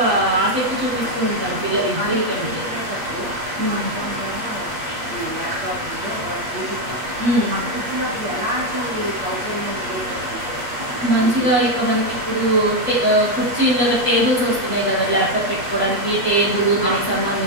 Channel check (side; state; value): left; late; 8.5 ms